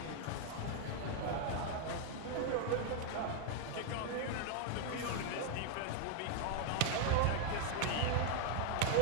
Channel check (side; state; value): both; different; correlation 0.00